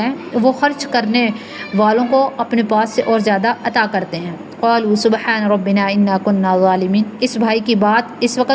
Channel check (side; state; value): both; identical; correlation 1.00